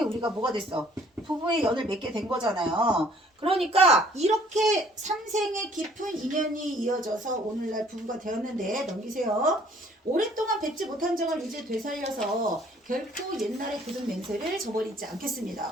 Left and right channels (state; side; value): normal; both; correlation 0.58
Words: 우리가 뭐가 됐어? 부부의 연을 맺게 된 거잖아요. 그러니까 이렇게 3생의 깊은 인연이 이어져서 오늘날 부부가 되었는데, 넘기세요. 오랫동안 뵙지 못한 정을 이제 되살려서 결코 옛날의 굳은 맹세를 저버리지